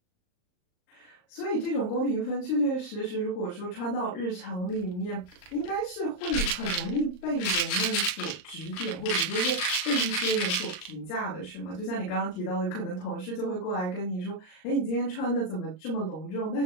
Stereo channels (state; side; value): late; right; 39 ms